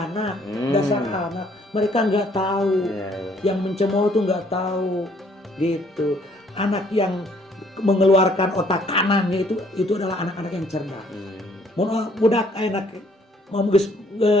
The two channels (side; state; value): both; normal; correlation 0.63